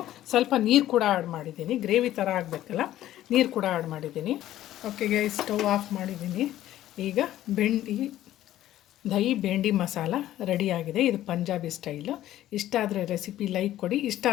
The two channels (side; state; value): right; quieter; 13.5 dB